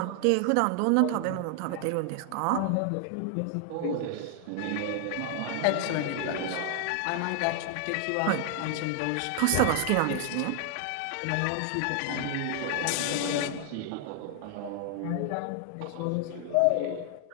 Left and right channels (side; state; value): both; different; correlation 0.00